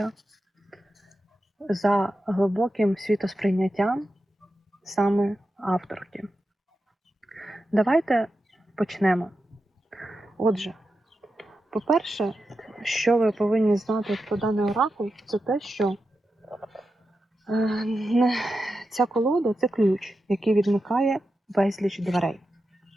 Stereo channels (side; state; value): both; normal; correlation 0.90